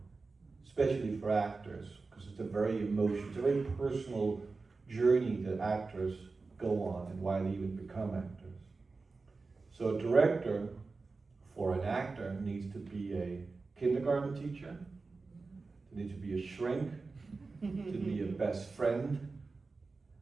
especially for actors, because it's a very very personal journey that actors go on and why they even become actors. So a director for an actor needs to be a kindergarten teacher, they need to be a shrink, to be a best friend,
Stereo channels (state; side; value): quieter; left; 4.0 dB